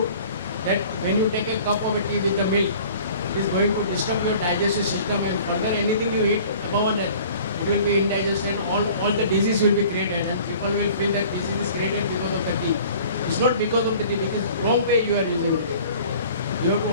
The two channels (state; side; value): inverted; both; correlation -0.48